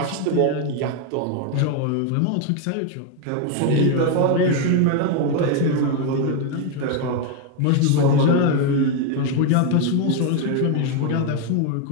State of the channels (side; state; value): both; different; correlation 0.01